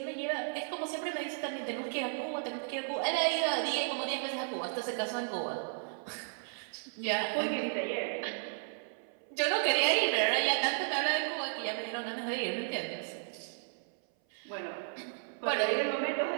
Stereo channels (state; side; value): silent; left; 55 dB below the other